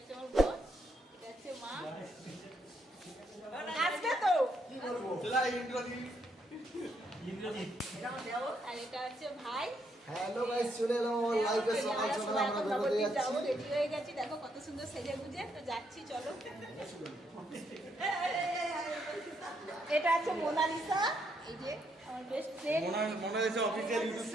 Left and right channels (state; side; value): normal; both; correlation 0.75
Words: আমার বোন, এটা হচ্ছে মা। আসবে তো আর এটা হচ্ছে ভাই। হ্যালো গাইস, চলে এলাম আমার লাইভে। সকাল সকাল আমরা বেরোতে যাচ্ছি। রেডি হয়ে গেছি, দেখো কত সুন্দর সেজে গুজে তো যাচ্ছি। চলো, এটা আছে মোনালিসা, এই যে আমার best friend Monalisa official YouTube